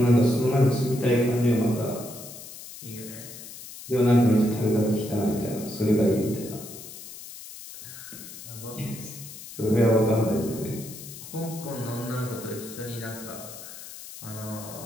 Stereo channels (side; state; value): left; noise; hiss, 14 dB below the sound